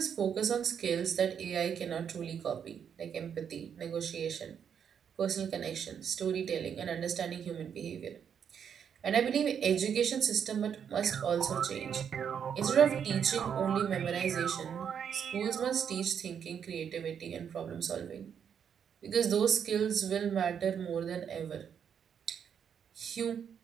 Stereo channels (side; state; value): left; quieter; 7.9 dB